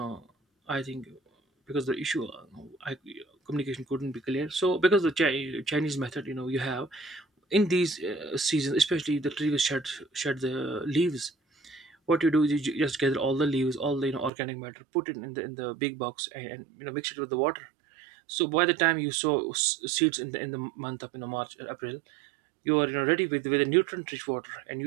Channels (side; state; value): left; drops out; at 14.3 s